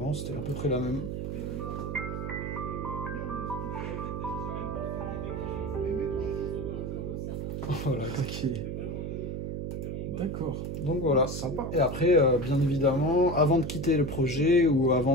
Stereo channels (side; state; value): right; noise; hum, 4 dB below the sound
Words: C'était à peu près la même. Voilà. Ok. D'accord. Donc voilà, sympa. Et après, bien évidemment, avant de quitter le projet ou avant